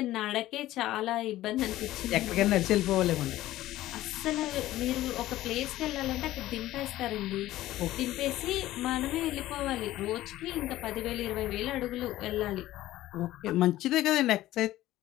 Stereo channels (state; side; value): quieter; right; 15.3 dB